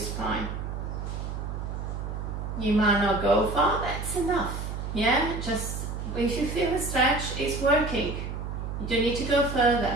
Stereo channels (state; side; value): noise; right; hum, 5 dB below the sound